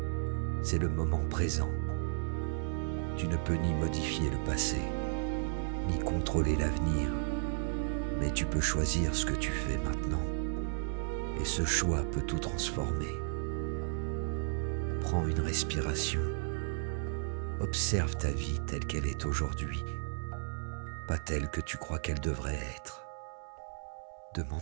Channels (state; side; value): silent; left; 55 dB below the other